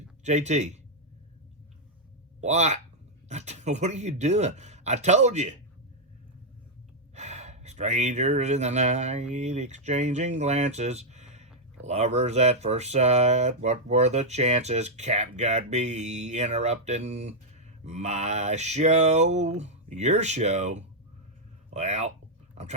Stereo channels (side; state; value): both; normal; correlation -0.03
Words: JT, what? What are you doing? I told you. Strangers in the night, exchanging glances. Lovers at first sight, what were the chances? CapGuy be interrupting my show, your show. Well, I'm